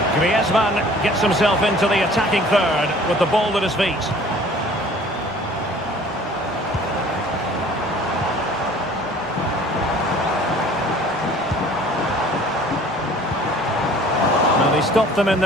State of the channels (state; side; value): normal; both; correlation 0.50